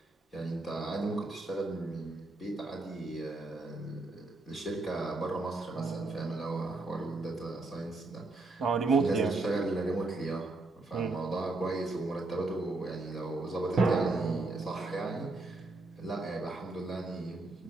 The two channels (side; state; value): left; quieter; 3.1 dB